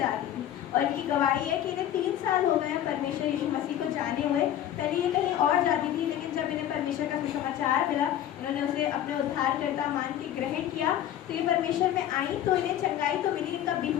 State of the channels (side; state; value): right; quieter; 11.3 dB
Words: थी। और इनकी गवाही है कि इन्हें 3 साल हो गए हैं परमेश्वर यीशु मसीह को जाने हुए। पहले ये कहीं और जाती थी, लेकिन जब इन्हें परमेश्वर का सुसमाचार मिला, इन्होंने उसे अपने उद्धारकर्ता मान के ग्रहण किया, तो ये परमेश्वर में आई, तो इन्हें चंगाई तो मिली। इनका